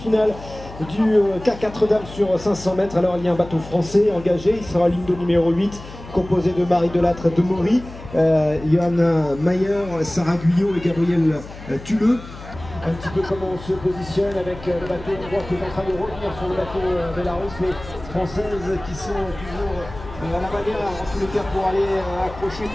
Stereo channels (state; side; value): noise; left; hum, 15 dB below the sound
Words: du K4 dames sur 500 mètres, alors il y a un bateau français engagé, il sera ligne de numéro 8, composé de Marie Delattre de Maury, Johanna Mayer, Sarah Guyot et Gabriel Tuleux. Un petit peu comment on se positionne avec le bateau hongrois qui est en train de revenir sur le bateau Belarus, les Françaises qui sont toujours à la manière, en tous les cas, pour aller accrocher